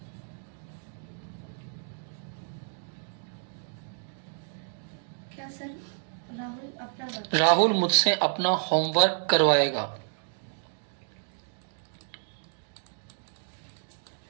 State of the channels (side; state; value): left; silent; digital silence